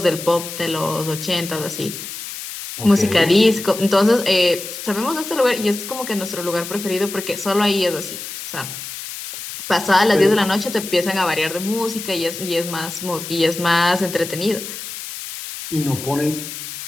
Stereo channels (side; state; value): left; noise; hiss, 9 dB below the sound